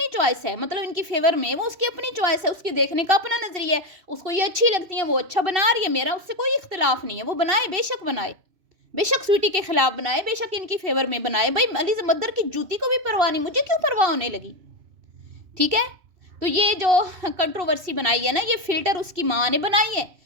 چوائس ہے، مطلب ان کی فیور میں وہ اس کی اپنی چوائس ہے، اس کی دیکھنے کا اپنا نظریہ ہے، اس کو یہ اچھی لگتی ہیں، وہ اچھا بنا رہی ہے، میرا اس سے کوئی اختلاف نہیں ہے، وہ بنائے، بے شک بنائے، بے شک سویٹی کے خلاف بنائے، بے شک ان کی فیور میں بنائے۔ بھائی علی زمدر کی جوتی کو بھی پرواہ نہیں، مجھے کیوں پرواہ ہونے لگی؟ ٹھیک ہے، تو یہ جو کنٹروورسی بنائی ہے نا، یہ فلٹر اس کی ماں نے بنائی ہے،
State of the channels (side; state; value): left; late; 2.7 ms